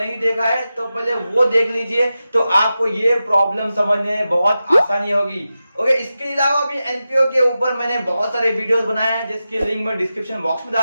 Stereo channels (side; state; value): both; inverted; correlation -0.92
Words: देखा है तो पहले वो देख लीजिए, तो आपको ये प्रॉब्लम समझने में बहुत आसानी होगी। ओके, इसके अलावा भी एनपीओ के ऊपर मैंने बहुत सारे वीडियोस बनाए हैं जिसके लिंक मैं डिस्क्रिप्शन बॉक्स में